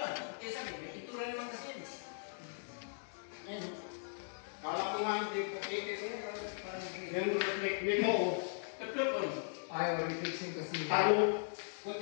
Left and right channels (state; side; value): silent; right; digital silence